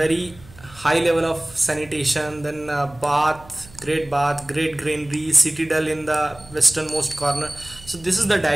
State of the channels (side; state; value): right; noise; hum, 22 dB below the sound